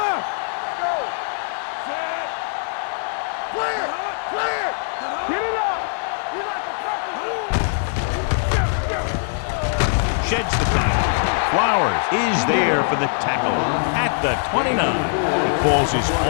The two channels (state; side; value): silent; right; digital silence